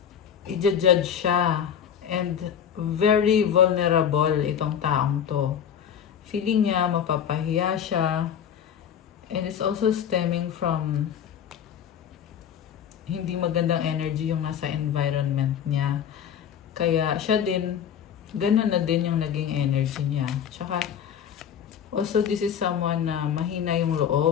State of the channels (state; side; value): quieter; right; 8.7 dB